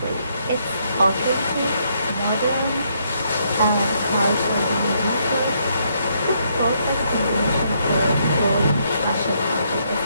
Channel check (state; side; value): inverted; both; correlation -0.73